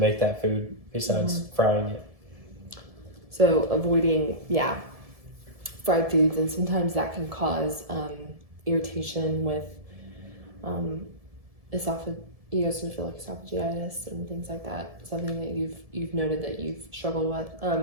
that food besides frying it. So avoiding fried foods, and sometimes that can cause irritation with esophagitis and things like that. Something that you've noted that you've struggled with.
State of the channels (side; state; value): left; late; 1.7 ms